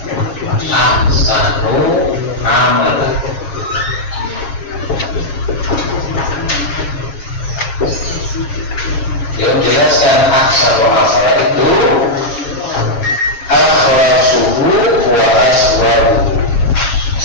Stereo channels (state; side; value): late; right; 7.3 ms